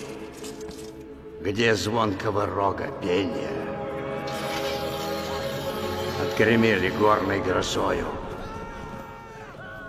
Где звонкого рога пения? Отгремели горной грозою,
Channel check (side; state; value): both; identical; correlation 1.00